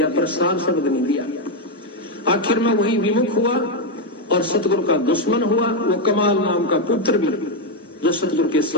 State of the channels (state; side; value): normal; both; correlation 0.04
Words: पर सार शब्द नहीं दिया। आखिर में वही विमुख हुआ और सतगुरु का दुश्मन हुआ। वो कमाल नाम का पुत्र भी जो सतगुरु के